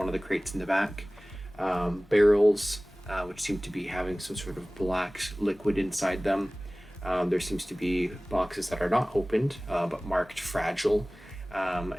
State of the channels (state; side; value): normal; both; correlation 0.98